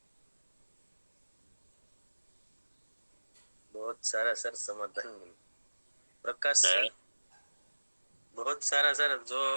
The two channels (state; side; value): inverted; both; correlation -1.00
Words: बहुत सारा सर समाधान मिला। प्रकाश है? सर, बहुत सारा सर,